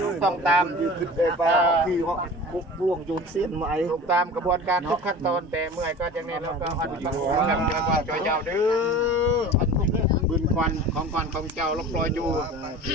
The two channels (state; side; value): normal; both; correlation 0.38